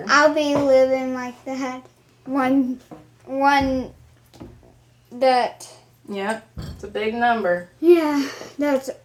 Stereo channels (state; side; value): identical; both; correlation 1.00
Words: I'll be living like that. One that. Yep, it's a big number. Yeah, that's